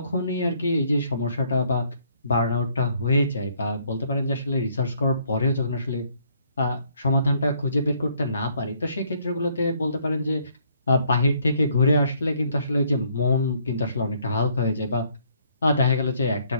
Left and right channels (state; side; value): inverted; both; correlation -0.66